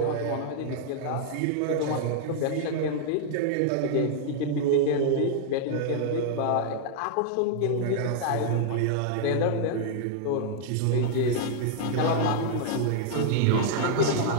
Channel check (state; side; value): different; both; correlation -0.01